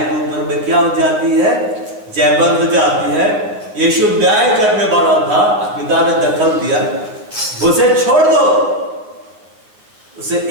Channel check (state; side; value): late; left; 9.4 ms